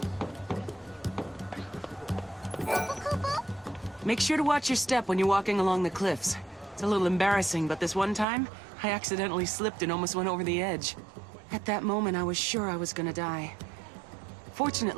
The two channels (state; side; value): drops out; left; at 8.2 s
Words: Make sure to watch your step when you're walking along the cliffs. It's a little embarrassing, but this one time, I accidentally slipped and almost went over the edge. At that moment, I was sure I was gonna die.